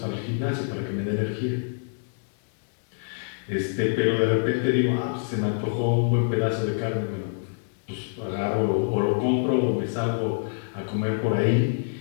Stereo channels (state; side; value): silent; right; 60 dB below the other